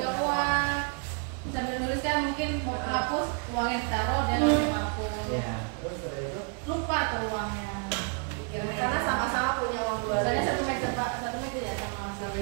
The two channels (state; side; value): quieter; left; 38.6 dB